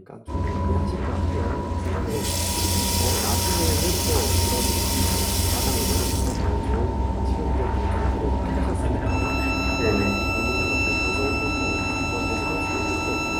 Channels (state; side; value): identical; both; correlation 1.00